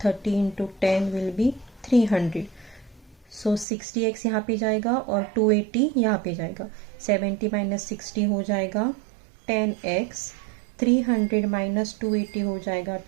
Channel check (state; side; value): drops out; left; at 3.7 s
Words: 30 into 10 will be 300। So 60x यहाँ पे जाएगा और 280 यहाँ पे जाएगा। 70 माइनस 60 हो जाएगा 10x, 300 माइनस 280 हो जाएगा